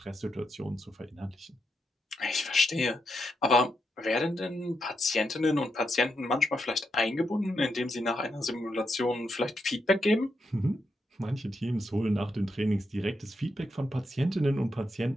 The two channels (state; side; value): normal; both; correlation 0.83